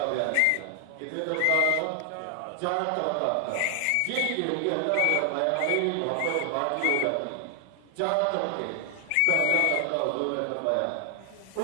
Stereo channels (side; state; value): both; different; correlation 0.00